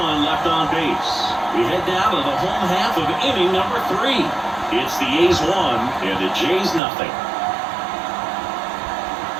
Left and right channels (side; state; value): left; drops out; at 6.8 s